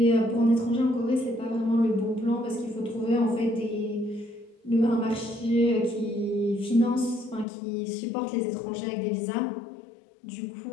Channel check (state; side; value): drops out; right; at 7.5 s